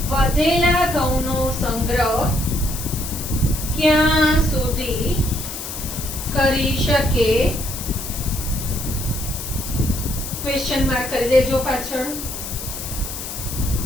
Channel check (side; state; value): left; noise; hiss, 8 dB below the sound